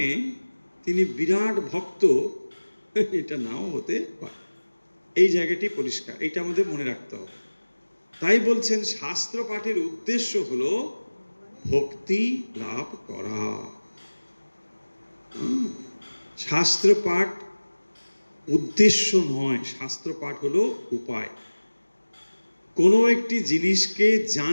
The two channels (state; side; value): inverted; both; correlation -1.00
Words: তিনি বিরাট ভক্ত, এটা নাও হতে পারে। এই জায়গাটি পরিষ্কার, এটা আমাদের মনে রাখতে হবে। তাই বলছেন শাস্ত্র পাঠের উদ্দেশ্য হলো ভক্তি লাভ করা। শাস্ত্র পাঠ উদ্দেশ্য নয়, শাস্ত্র পাঠ হলো উপায়। কোনো একটি জিনিসকে